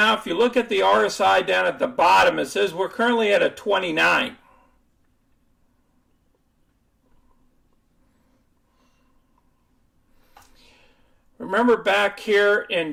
if you look at the RSI down at the bottom, it says we're currently at a 29. Remember back here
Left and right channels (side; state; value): both; identical; correlation 1.00